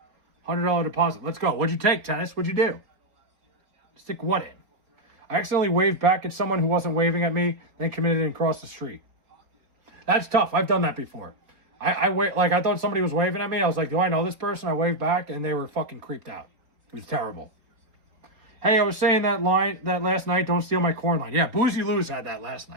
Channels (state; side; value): late; left; 4.1 ms